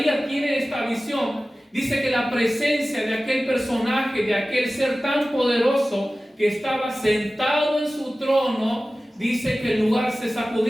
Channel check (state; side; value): normal; both; correlation 0.96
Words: tiene esta visión, dice que la presencia de aquel personaje, de aquel ser tan poderoso que estaba sentado en su trono, dice que el lugar se